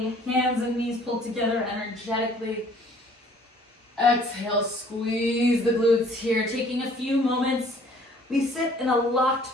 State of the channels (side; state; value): both; normal; correlation 0.56